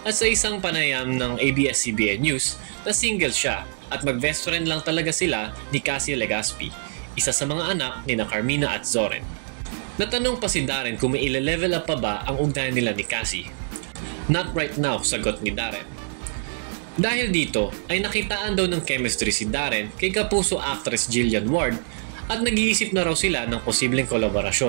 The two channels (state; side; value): silent; left; digital silence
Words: at sa isang panayam ng ABS-CBN News na single siya at mag-best friend lang talaga sila ni Cassie Legaspi, isa sa mga anak ni na Carmina at Zoren. Natanong pa si Darren kung may ile-level up pa ba ang ugnayan nila ni Cassie. "Not right now," sagot ni Darren. Dahil dito ay nakitaan daw ng chemistry si Darren kay kapuso actress Jillian Ward at nag-iisip na raw sila ng posibleng